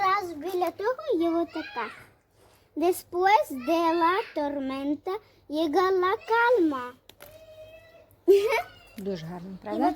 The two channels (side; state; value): both; identical; correlation 1.00